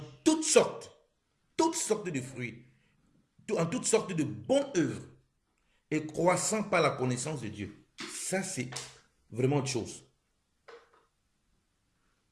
toutes sortes de fruits, en toutes sortes de bonnes œuvres, et croissant par la connaissance de Dieu. Ça, c'est vraiment autre chose.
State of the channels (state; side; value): identical; both; correlation 1.00